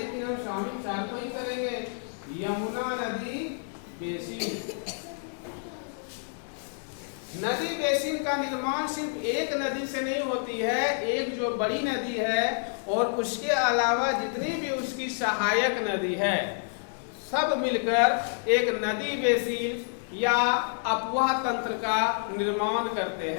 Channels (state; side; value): silent; right; 59 dB below the other